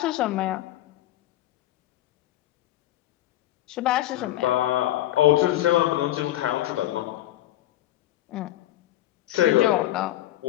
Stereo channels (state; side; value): quieter; right; 14.4 dB